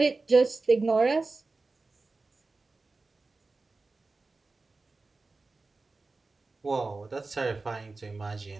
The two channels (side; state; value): left; quieter; 3.7 dB